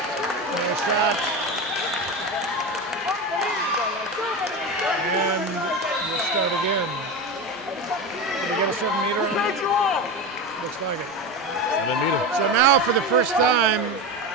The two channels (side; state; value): both; normal; correlation 0.21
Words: No shot. And we'll start again. Did we get a 7-meter on it? Looks like it. 7-meter. So now for the first time